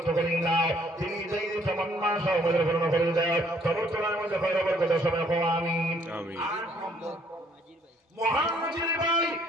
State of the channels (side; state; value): both; normal; correlation 0.64